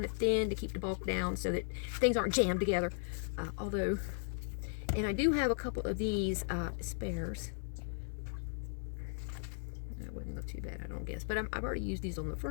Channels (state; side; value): silent; right; 53 dB below the other